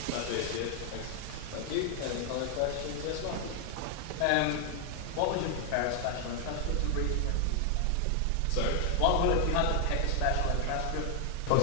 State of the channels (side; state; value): both; different; correlation 0.00